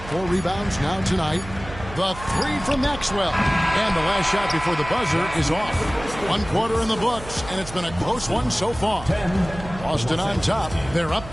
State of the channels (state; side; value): noise; right; hum, 13 dB below the sound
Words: 4 rebounds now tonight. The 3 from Maxwell. And the last shot before the buzzer is off. 1 quarter in the books, and it's been a close one so far. Boston on top. They're up